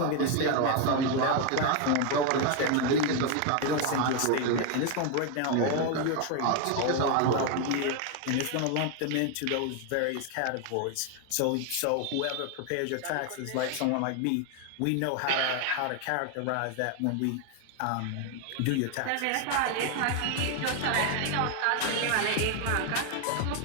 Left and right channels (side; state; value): both; different; correlation 0.01